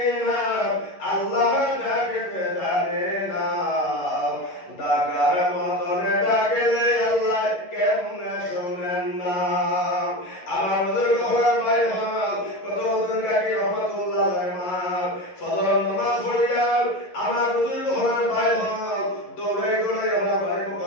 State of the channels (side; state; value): right; late; 11 ms